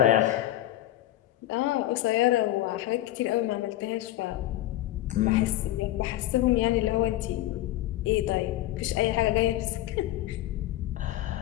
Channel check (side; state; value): right; quieter; 14.8 dB